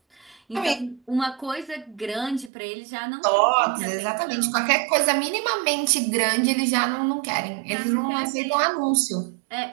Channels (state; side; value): drops out; left; at 2.5 s